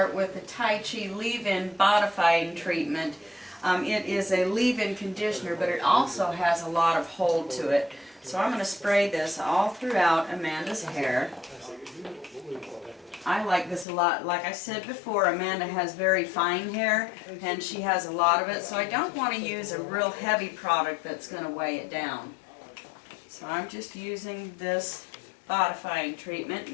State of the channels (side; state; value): right; drops out; at 13.9 s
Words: with the Tai Chi leave-in bodifying treatment. It is a leave-in conditioner, but it also has a lot of hold to it. So I'm going to spray this all throughout Amanda's hair. I like this a lot. Like I said before, Amanda has very fine hair, and she has a lot of it, so I don't want to use a real heavy product that's going to weigh it down. So I'm just using this bodifying treatment,